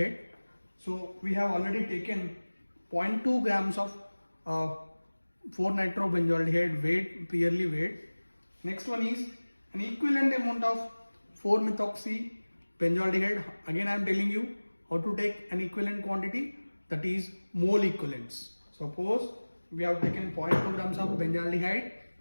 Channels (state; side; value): inverted; both; correlation -1.00